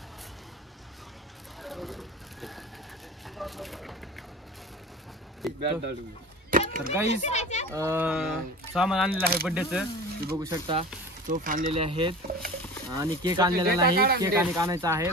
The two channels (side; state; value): both; normal; correlation 0.35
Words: तर गाईज, सामान आणलेलं आहे बर्थडेचं. तुम्ही बघू शकता. तोफ आणलेले आहेत. आणि केक आणलेला नाही, केक आणि आणायचा आहे,